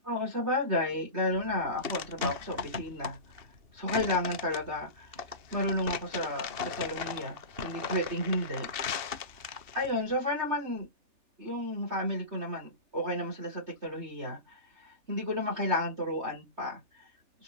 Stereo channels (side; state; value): left; late; 3.4 ms